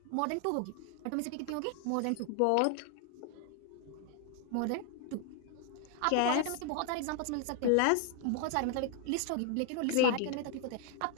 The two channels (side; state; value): both; different; correlation 0.00